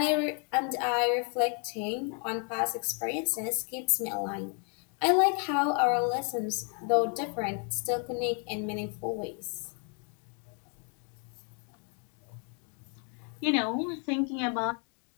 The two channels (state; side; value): quieter; right; 39.9 dB